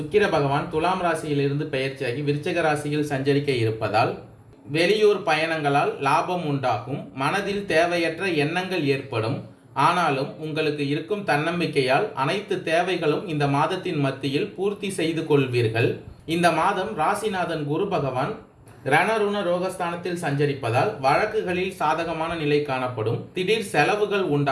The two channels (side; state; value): both; identical; correlation 1.00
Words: பகவான் துலாம் ராசியிலிருந்து பயிற்சியாகி விருச்சக ராசியில் சஞ்சரிக்க இருப்பதால் வெளியூர் பயணங்களால் லாபம் உண்டாகும். மனதில் தேவையற்ற எண்ணங்கள் ஏற்படும். ஆனாலும் உங்களுக்கு இருக்கும் தன்னம்பிக்கையால் அனைத்து தேவைகளும் இந்த மாதத்தின் மத்தியில் பூர்த்தி செய்து கொள்வீர்கள். இந்த மாதம் ராசிநாதன் குரு பகவான் ரணருண ரோகஸ்தானத்தில் சஞ்சரிப்பதால் வழக்குகளில் சாதகமான நிலை காணப்படும். திடீர் செலவுகள்